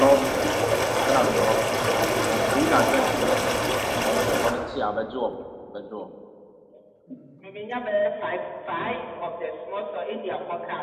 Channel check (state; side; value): identical; both; correlation 1.00